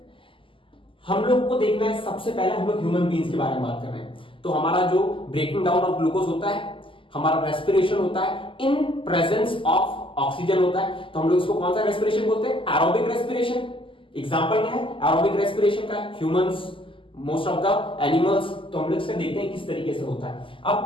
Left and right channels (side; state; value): right; late; 0.25 ms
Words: हम लोग को देखना है, सबसे पहले हम लोग ह्यूमन बीइंग्स के बारे में बात कर रहे हैं। तो हमारा जो ब्रेकिंग डाउन ऑफ ग्लूकोज होता है, हमारा रेस्पिरेशन होता है इन प्रेजेंस ऑफ ऑक्सीजन होता है। तो हम लोग इसको कौन सा रेस्पिरेशन बोलते हैं? Aerobic respiration. एग्जांपल क्या है एरोबिक रेस्पिरेशन का? Humans, most of the animals. तो हम लोग इसका देखते हैं किस तरीके से होता है।